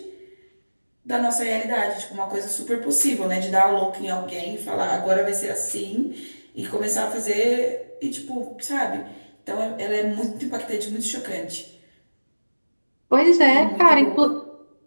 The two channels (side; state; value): both; inverted; correlation -1.00